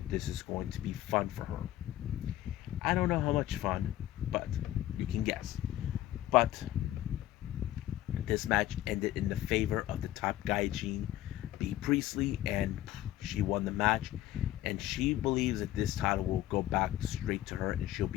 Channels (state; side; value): quieter; right; 14.1 dB